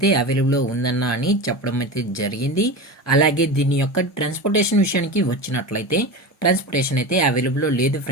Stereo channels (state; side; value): normal; both; correlation 0.26